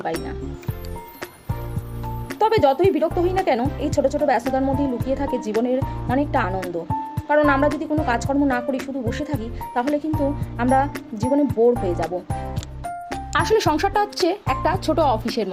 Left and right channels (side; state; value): both; identical; correlation 1.00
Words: পারি না। তবে যতই বিরক্ত হই না কেন, এই ছোট ছোট ব্যস্ততার মধ্যেই লুকিয়ে থাকে জীবনের অনেকটা আনন্দ। কারণ আমরা যদি কোনো কাজকর্ম না করি, শুধু বসে থাকি, তাহলে কিন্তু আমরা জীবনে বোর হয়ে যাব। আসলে সংসারটা হচ্ছে একটা ছোট অফিসের